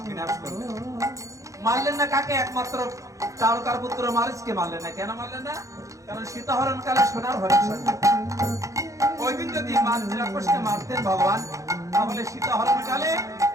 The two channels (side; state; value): left; late; 0.15 ms